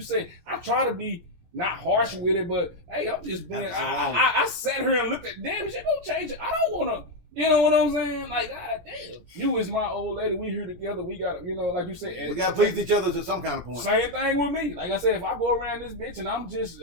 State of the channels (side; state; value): left; late; 17 ms